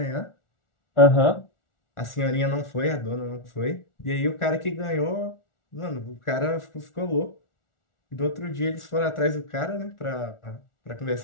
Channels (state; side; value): late; right; 1.4 ms